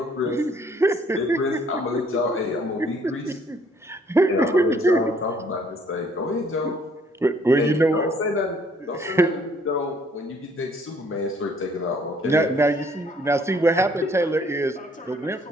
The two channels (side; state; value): both; normal; correlation 0.62